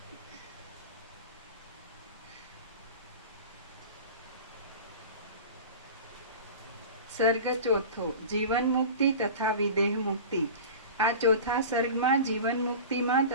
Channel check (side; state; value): both; inverted; correlation -0.34